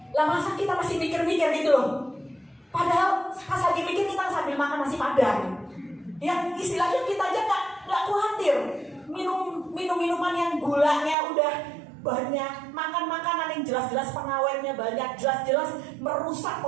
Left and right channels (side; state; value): left; drops out; at 11.2 s